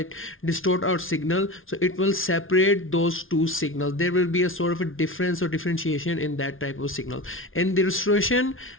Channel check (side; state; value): right; late; 0.59 ms